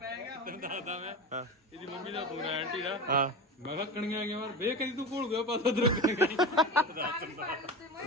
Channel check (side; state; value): both; normal; correlation 0.26